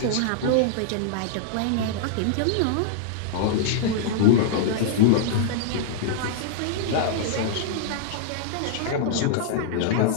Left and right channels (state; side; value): different; both; correlation -0.01